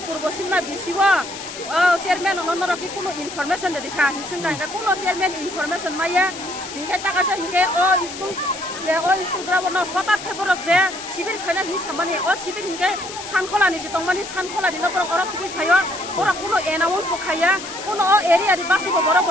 purbo simna bisiwa chairman onoro ki kuno information de dikha hisinga nga kuno chairman information maya hingke takasa hingke school যে school ground হঠাৎ খেবরক যে শিবির খাইনা হি সামানি শিবির হিংকে সানখলানি সে তংমানি সানখলানি নকর or ফুই খাইয়া ওরা কোনো announce বখাইয়া কোনো এরিয়ারি বাসিব বড়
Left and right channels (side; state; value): left; noise; hiss, 11 dB below the sound